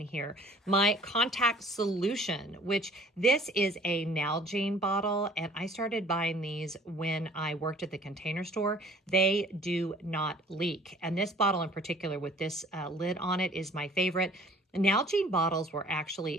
My contact solution, which this is a Nalgene bottle, and I started buying these when I worked at the Container Store. They do not leak. And this bottle in particular with this lid on it is my favorite. Nalgene bottles were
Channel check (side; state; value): both; normal; correlation 0.52